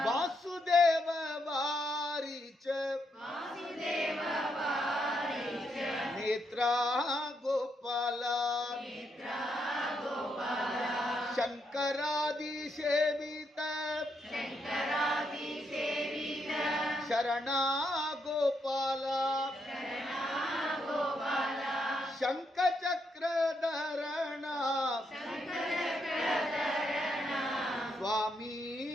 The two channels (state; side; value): normal; both; correlation 0.79